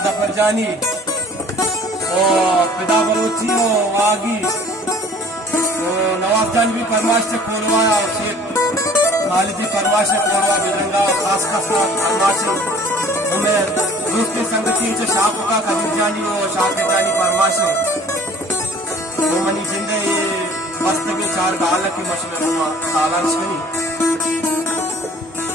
जफर जानी और पिदा बलोची हो, वागी तो नवाब जान भी फरमाश से कोरवा और शेख खालिदी फरमाश से कोरवा बिरंगा खास खास फरमाश हमें दूसरी संगति जो शाह का कबीर जानी हो, शाह जानी फरमाश तो मनी जिंदे मस्त के चार गाल की मशहूर सालान शनी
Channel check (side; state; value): both; normal; correlation 0.50